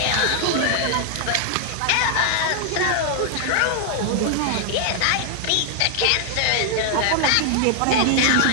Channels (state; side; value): different; both; correlation 0.00